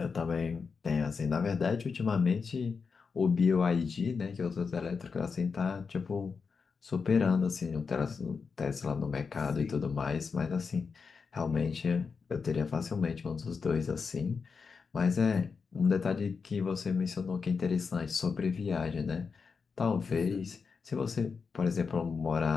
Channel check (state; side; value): quieter; right; 5.3 dB